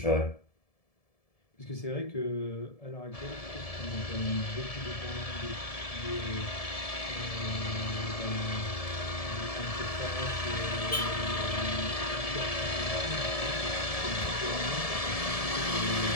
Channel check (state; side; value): late; right; 1.7 ms